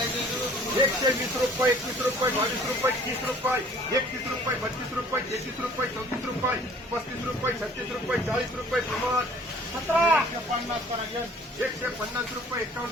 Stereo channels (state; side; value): normal; both; correlation 0.53